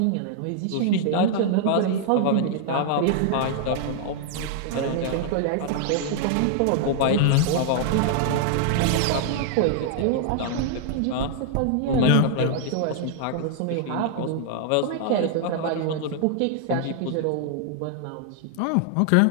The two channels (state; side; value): different; both; correlation -0.01